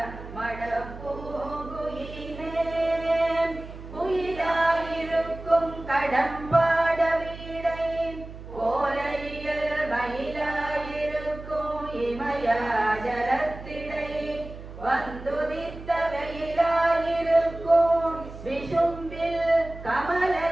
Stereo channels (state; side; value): noise; right; hum, 13 dB below the sound